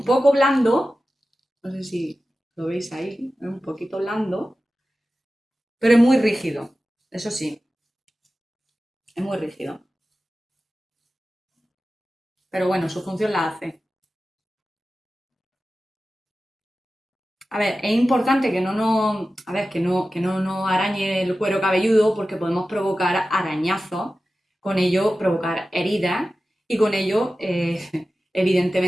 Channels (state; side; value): normal; both; correlation 0.94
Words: poco blando. No sé si lo veis ahí. Es un poquito blando. Pero es muy rígido. Eso sí, es muy rígido. Pero bueno, su función la hace. A ver, es importante que no nos, a ver, que no nos arañe el cuero cabelludo porque podemos provocar arañazos, con ello provocar heridas y con ello,